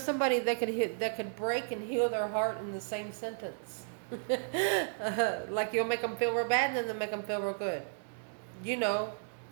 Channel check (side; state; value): left; silent; digital silence